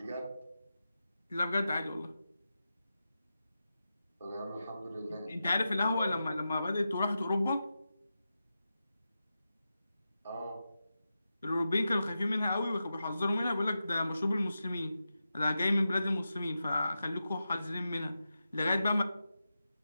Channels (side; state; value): both; inverted; correlation -0.91